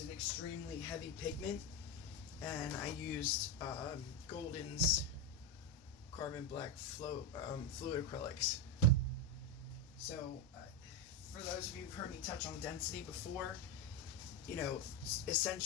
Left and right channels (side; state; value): both; normal; correlation 0.10